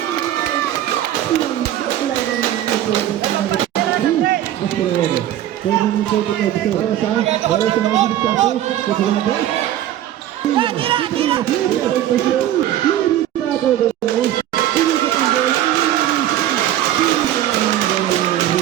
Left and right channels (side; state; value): left; quieter; 12.3 dB